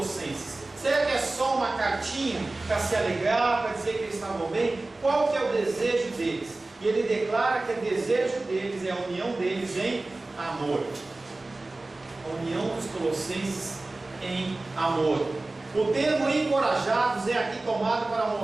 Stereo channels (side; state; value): left; quieter; 3.0 dB